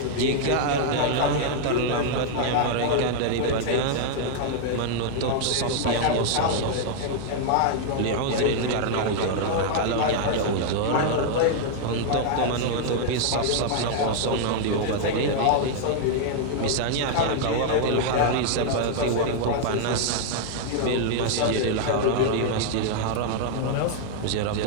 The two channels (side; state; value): both; different; correlation 0.00